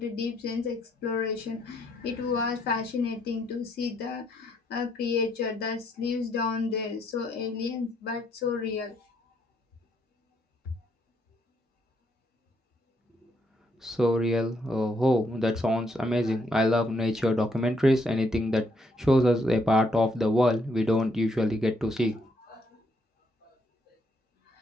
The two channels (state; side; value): normal; both; correlation 0.73